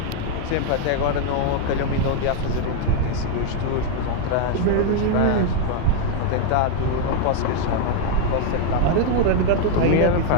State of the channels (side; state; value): both; different; correlation 0.00